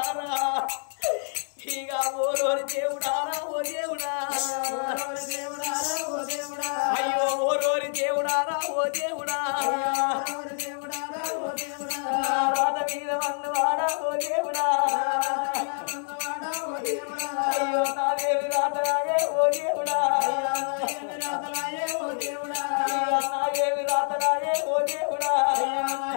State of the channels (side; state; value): right; silent; digital silence